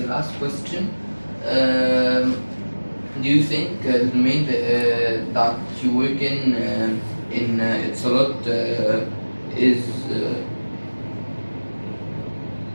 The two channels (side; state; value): both; inverted; correlation -1.00